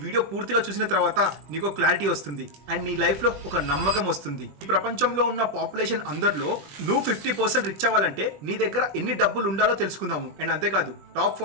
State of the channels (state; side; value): late; left; 21 ms